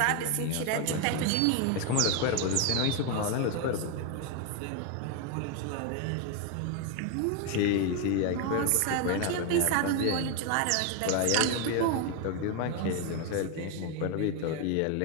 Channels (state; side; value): different; both; correlation 0.01